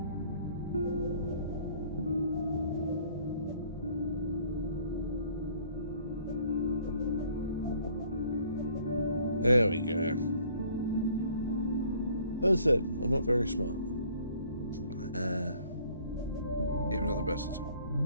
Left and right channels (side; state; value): both; inverted; correlation -0.57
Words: There we go. As I said, I'm not very smart. Even at the best of times.